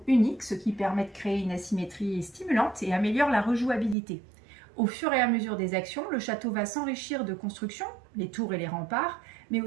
unique, ce qui permet de créer une asymétrie stimulante et améliore la rejouabilité. Au fur et à mesure des actions, le château va s'enrichir de constructions, les tours et les remparts, mais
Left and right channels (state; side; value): drops out; left; at 4.0 s